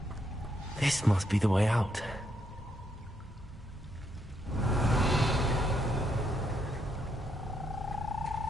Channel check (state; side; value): normal; both; correlation 0.77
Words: This must be the way out.